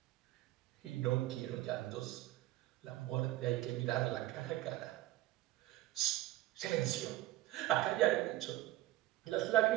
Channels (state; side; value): quieter; left; 16.4 dB